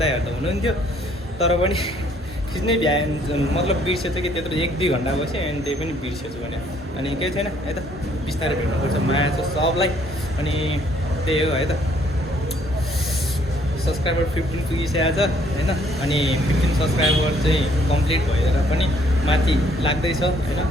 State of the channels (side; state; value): both; normal; correlation 0.64